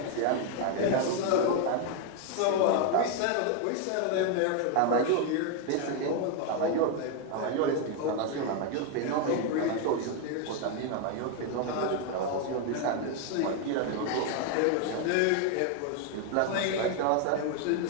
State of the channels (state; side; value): different; both; correlation 0.01